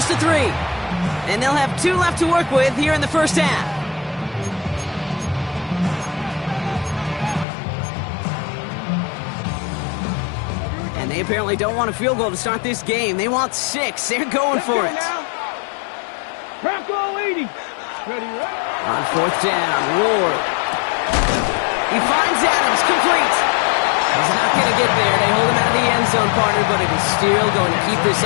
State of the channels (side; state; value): right; drops out; at 7.5 s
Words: and 3. And they'll have 2 left to work with here in the first half. And they apparently don't want a field goal to start this game. They want 6. They're going for it. Bronco 80. Ready, right? On 4th down, Ward. He finds Adams, complete. He's not going to get there. They hold him out of the end zone, partner, but it is still going to keep this